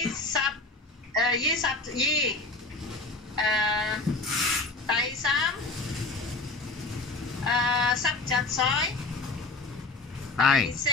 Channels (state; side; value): quieter; right; 3.3 dB